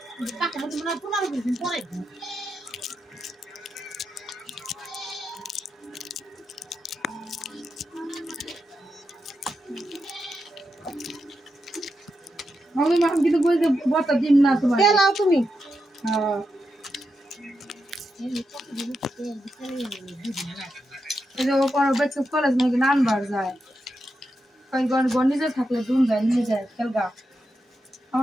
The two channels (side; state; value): both; normal; correlation 0.86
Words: পাকে মধ্যে মনে 15 দিন পরে আমি কিন্তু বলতে বতা দিন না তোমার তেলাও তুমি হ্যাঁ এই যে ও পর বেচে কলেজ নাকি নানবার যায় কই গন নিজে থাকলে দুন যায় নিয়ে যায় খেলগা